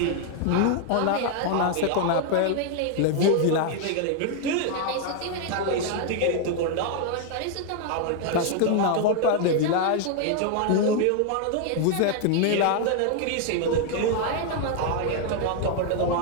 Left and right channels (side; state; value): both; different; correlation 0.00